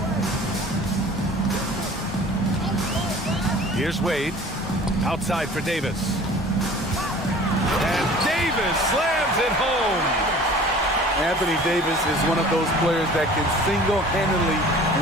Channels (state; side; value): normal; both; correlation 0.46